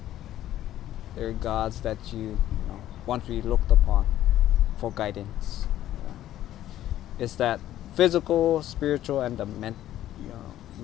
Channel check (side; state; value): right; quieter; 12.9 dB